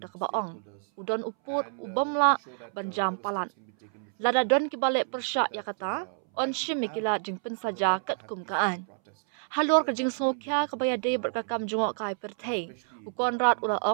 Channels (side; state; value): left; silent; 59 dB below the other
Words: da ka ba ong udon uput ubamla ban jam palan lada don ki balik persya ya kata on shim kila jing pynsaja kat kum ka an halor ka jing sokya ka baya dei ber ka kam jongok kai perthei u konrat ula